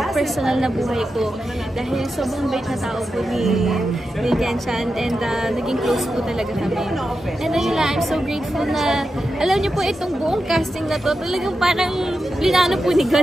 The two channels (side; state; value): both; normal; correlation 0.89